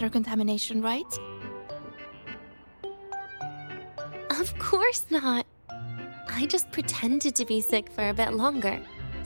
contamination, right? Of course not. I just pretended to be sick for a bit longer,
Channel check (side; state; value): both; inverted; correlation -1.00